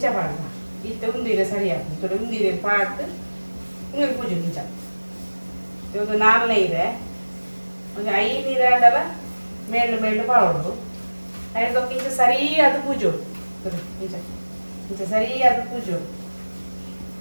ಪಾಡ ಇತ್ತೆ ಉಂದಿರೆ ಸರಿ ಹಾಕ್ಬೇಕು ಉಂದಿರೆ ಪಾಡ್ದು ನೀರು ಪೂಜೆ ಇಂಚ ಒಂದು 4 ಇದೆ ಒಂದು 5 ನೀರು ಆಡಲ್ಲ ಮೇಳು ಮೇಳು ಪಾವಡು ಐದೊಕ್ಕ ಇಂಚ ಸರಿಯಾದ ಪೂಜೆ ಇಂಚ ಇಂಚ ಸರಿಯಾದ ಪೂಜೆ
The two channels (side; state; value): both; inverted; correlation -1.00